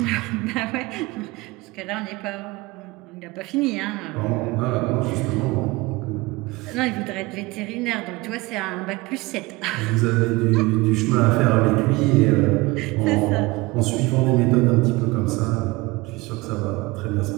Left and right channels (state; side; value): quieter; left; 22.7 dB